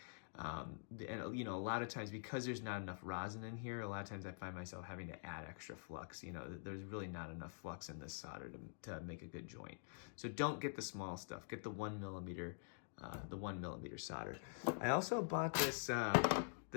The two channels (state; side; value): silent; right; digital silence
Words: And you know, a lot of times, because there's not enough rosin in here, a lot of times I find myself having to add extra flux. You know, there's really not enough flux in this solder to make a good joint. So don't get the small stuff. Get the 1 millimeter solder. I also bought this